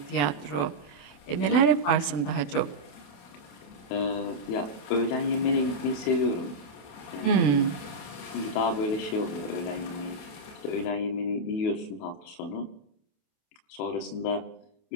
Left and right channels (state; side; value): late; right; 28 ms